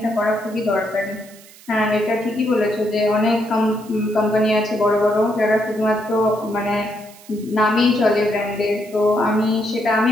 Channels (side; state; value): right; noise; hiss, 22 dB below the sound